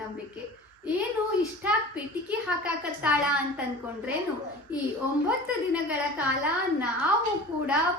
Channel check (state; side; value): normal; both; correlation 0.38